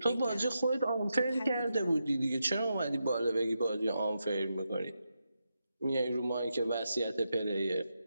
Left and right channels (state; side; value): inverted; both; correlation -0.86